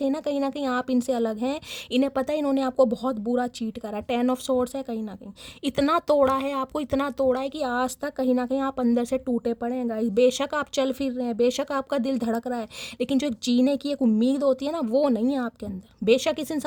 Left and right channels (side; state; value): both; identical; correlation 1.00